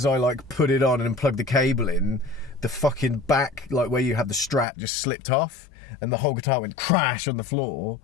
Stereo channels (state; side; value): drops out; right; at 4.7 s